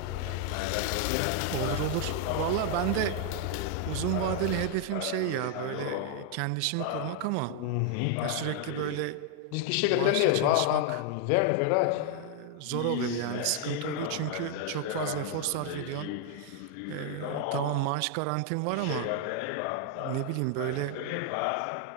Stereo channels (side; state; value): both; different; correlation 0.00